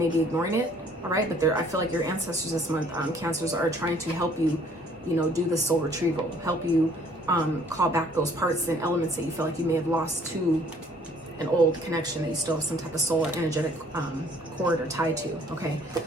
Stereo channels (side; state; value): both; normal; correlation 0.59